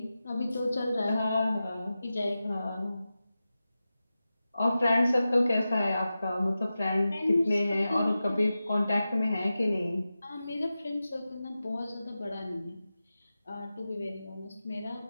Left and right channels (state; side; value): inverted; both; correlation -0.93